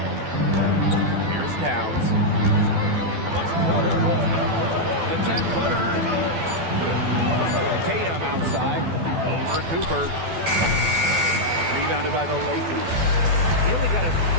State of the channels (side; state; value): left; late; 12 ms